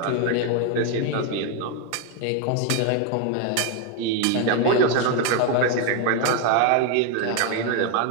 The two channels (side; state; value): both; different; correlation 0.01